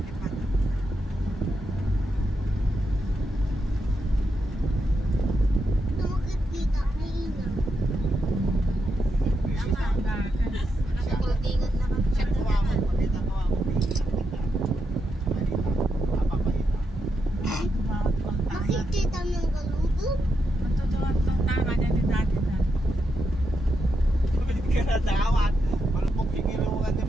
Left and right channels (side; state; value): both; normal; correlation 0.84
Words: Nakakultingan na kami. Makikita mo yung galubog? Matutuwa itong tama niya ni dati na. Pabalik ka na dawat. Malupok yung ilungan di